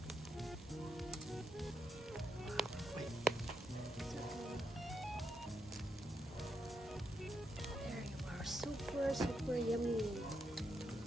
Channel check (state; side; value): normal; both; correlation 0.81